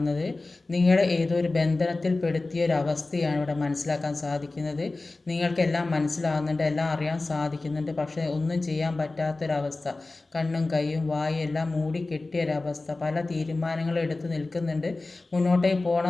നിങ്ങളെ ഏതോ ഒരു ബന്ധനത്തിൽ പെടുത്തിയൊരവസ്ഥയാണ് ഇവിടെ മനസ്സിലാക്കാൻ സാധിക്കുന്നത്. നിങ്ങൾക്കെല്ലാം മനസ്സിലാകുന്നുണ്ട്, എല്ലാം അറിയാൻ സാധിക്കുന്നുണ്ട്. പക്ഷേ ഒന്നും ചെയ്യാൻ പറ്റാത്തൊരവസ്ഥ, കണ്ണും കൈയും വായും എല്ലാം മൂടിക്കെട്ടിയൊരവസ്ഥ. പല തീരുമാനങ്ങളും എടുത്ത് നിൽക്കുന്നുണ്ട്, മുന്നോട്ടേക്ക്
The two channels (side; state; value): right; quieter; 3.2 dB